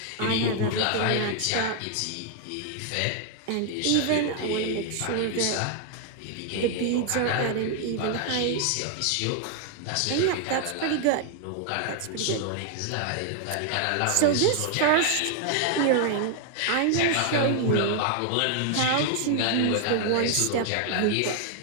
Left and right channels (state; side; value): different; both; correlation 0.00